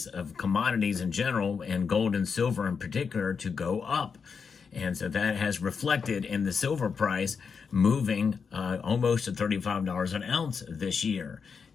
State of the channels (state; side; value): quieter; right; 5.8 dB